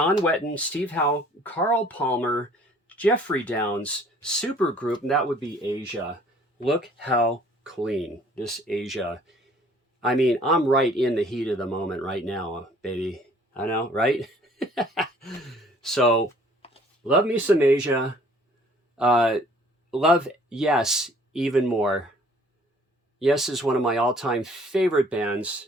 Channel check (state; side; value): normal; both; correlation 0.56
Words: Wetton, Steve Howe, Carl Palmer, Jeffrey Downs, supergroup, and that would be Asia. Look how clean this Asia. I mean, I'm right in the heat of the moment right now, baby. I know, right? So, love me some Asia. Love Yes even more. Yes is one of my all-time favorite bands.